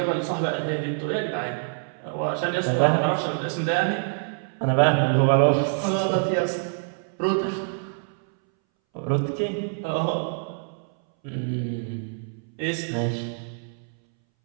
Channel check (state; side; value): silent; left; 61 dB below the other